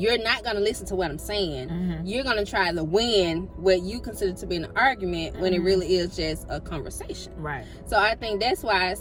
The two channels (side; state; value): both; identical; correlation 1.00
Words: not going to listen to what I'm saying. Mhm. You're going to try to win what you consider to be an argument when it Mhm. really is just a conversation. Right. So I think that's why I